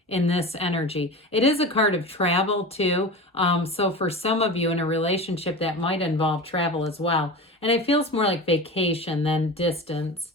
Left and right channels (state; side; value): normal; both; correlation 0.30